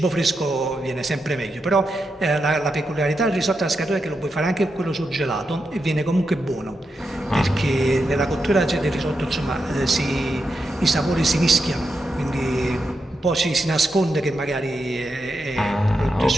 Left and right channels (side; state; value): both; normal; correlation 0.86